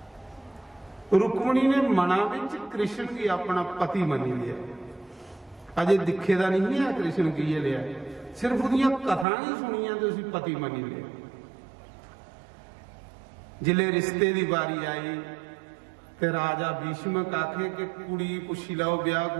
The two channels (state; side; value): drops out; left; at 9.2 s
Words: रुक्मणी ने मना विच कृष्ण की अपना पति मनी लिया। अजे दिखे दा नहीं है कृष्ण की ये लिया सिर्फ उसदियां कथा ही सुनिया तो उसी पति मनी लिया। जिले रिश्ते की बारी आई ते राजा भीष्मक आखे कि कुड़ी पुछी लो ब्याह